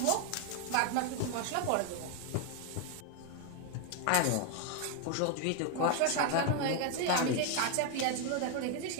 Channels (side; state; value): both; different; correlation 0.01